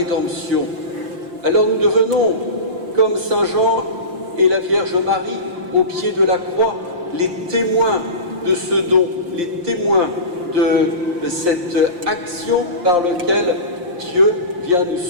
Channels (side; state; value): left; late; 5.7 ms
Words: Alors nous devenons, comme Saint Jean et la Vierge Marie, au pied de la croix, les témoins de ce don, les témoins de cette action par laquelle Dieu vient nous